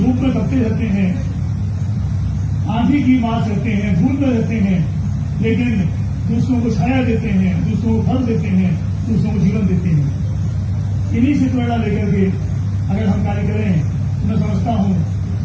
में तपते रहते हैं, आंधी की मार रहते हैं, धूल में रहते हैं, लेकिन दूसरों को छाया देते हैं, दूसरों को फल देते हैं, दूसरों को जीवन देते हैं। इन्हीं से प्रेरणा लेकर के अगर हम कार्य करें तो मैं समझता हूं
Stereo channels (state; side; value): identical; both; correlation 1.00